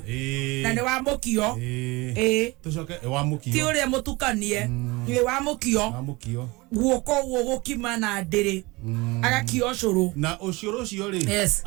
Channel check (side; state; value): left; quieter; 23.5 dB